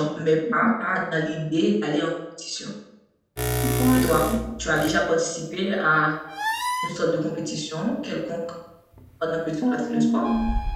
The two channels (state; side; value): identical; both; correlation 1.00